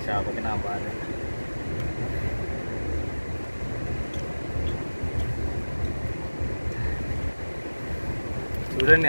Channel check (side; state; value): both; inverted; correlation -1.00